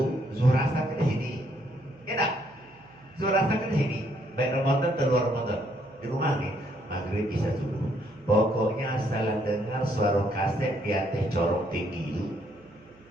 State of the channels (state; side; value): noise; right; hum, 27 dB below the sound